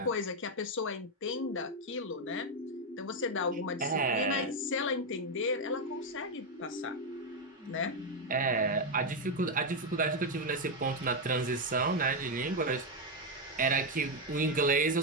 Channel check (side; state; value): both; normal; correlation 0.04